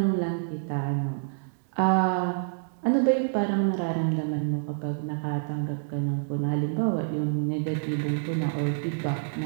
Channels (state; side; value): silent; left; digital silence